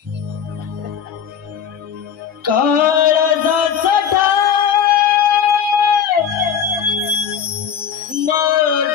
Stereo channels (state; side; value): quieter; right; 8.0 dB